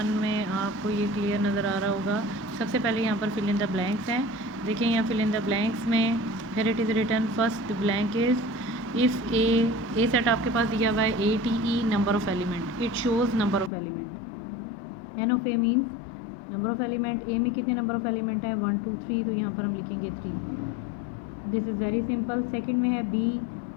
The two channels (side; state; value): right; drops out; at 13.7 s